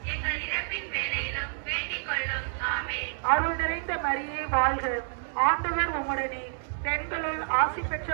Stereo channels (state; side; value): silent; left; 59 dB below the other